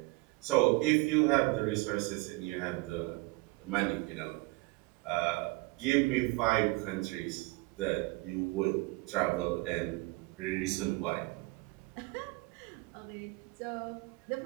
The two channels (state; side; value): quieter; left; 23.9 dB